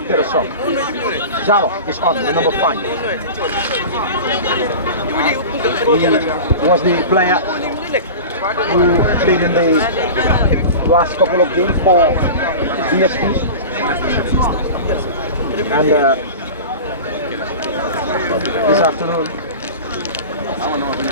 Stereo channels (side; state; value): both; inverted; correlation -0.32